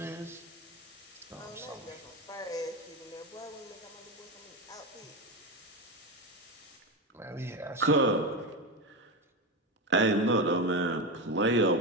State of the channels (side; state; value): both; normal; correlation 0.16